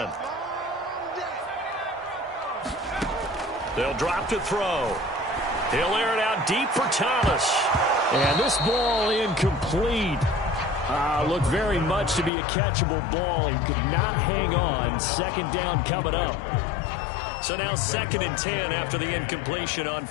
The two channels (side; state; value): right; drops out; at 12.3 s